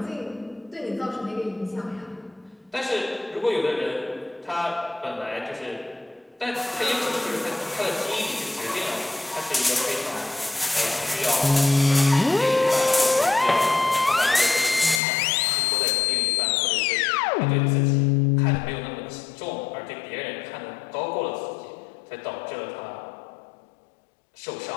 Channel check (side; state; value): right; drops out; at 15.0 s